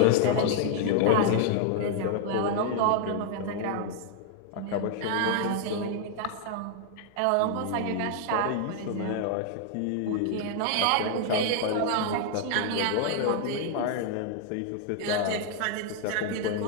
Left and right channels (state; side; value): different; both; correlation 0.00